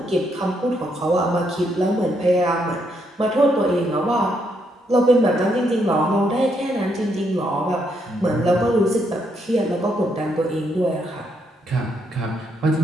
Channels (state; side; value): normal; both; correlation 0.76